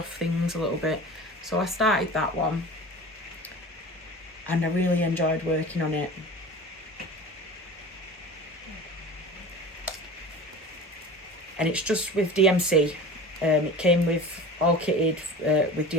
things a little bit. So I started that one. And I really enjoyed working on it. And it's just with DMC. It came with all kitted with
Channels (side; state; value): both; normal; correlation 0.36